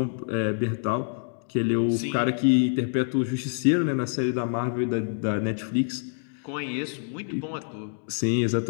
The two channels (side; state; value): right; silent; digital silence